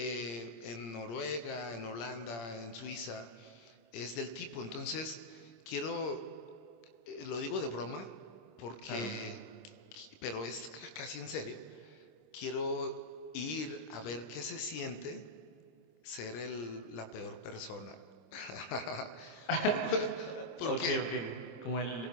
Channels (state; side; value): late; right; 26 ms